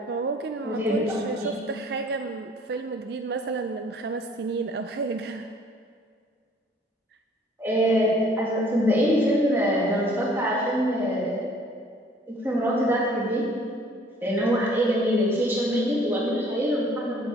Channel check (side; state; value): both; normal; correlation 0.56